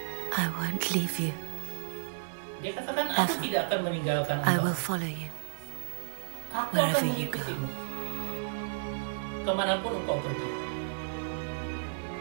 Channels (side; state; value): left; silent; 56 dB below the other